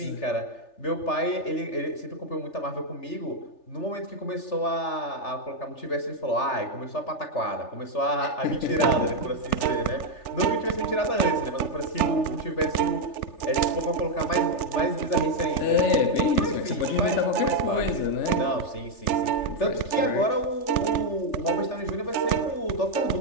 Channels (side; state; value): right; late; 3.4 ms